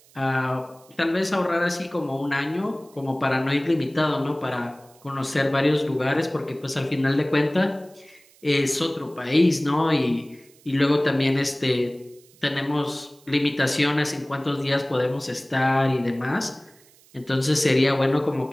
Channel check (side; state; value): right; noise; hiss, 28 dB below the sound